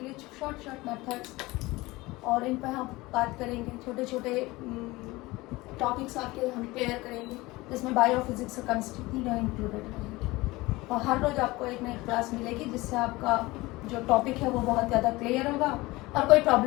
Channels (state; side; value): quieter; right; 20.8 dB